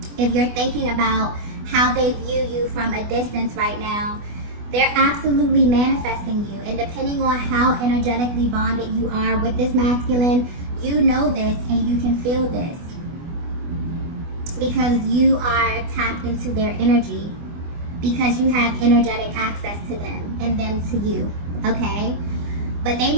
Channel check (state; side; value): late; left; 24 ms